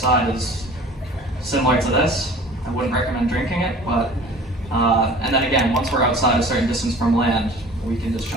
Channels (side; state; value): both; normal; correlation 0.45